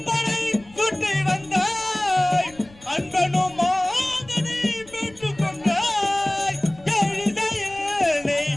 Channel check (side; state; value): left; noise; rumble, 24 dB below the sound